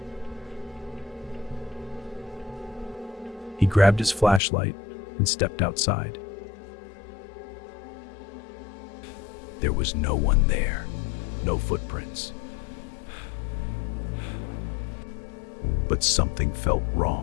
He grabbed his flashlight and stepped outside. There was no one there, no footprints. But something felt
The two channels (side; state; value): right; drops out; at 4.4 s